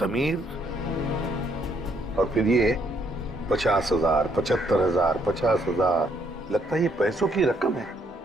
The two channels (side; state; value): both; normal; correlation 0.71